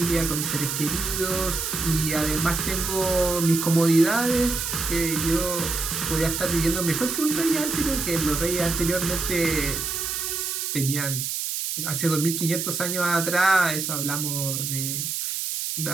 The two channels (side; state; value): right; noise; hiss, 2 dB below the sound